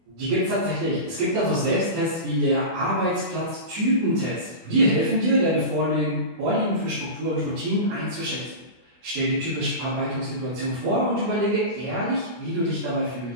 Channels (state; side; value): late; left; 24 ms